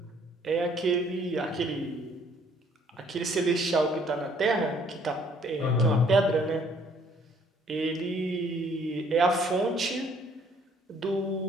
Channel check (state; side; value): normal; both; correlation 0.62